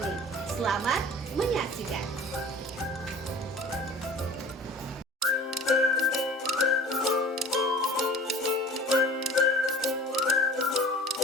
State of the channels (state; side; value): normal; both; correlation 0.44